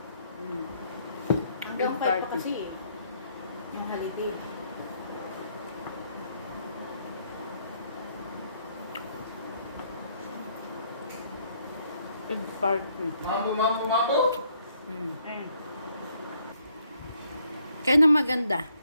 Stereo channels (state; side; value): inverted; both; correlation -0.69